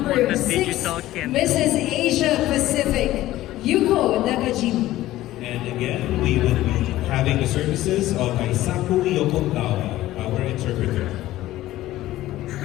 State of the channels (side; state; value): right; quieter; 15.4 dB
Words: what the 6, digital can- Mrs. Asia Pacific, Yuko Nakajima. And again, we will be having the services of Aisaku Yokogawa, our interpreter.